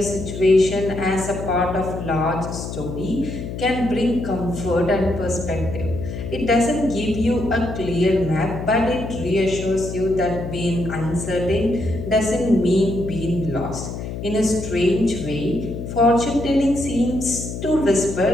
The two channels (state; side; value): noise; left; hum, 7 dB below the sound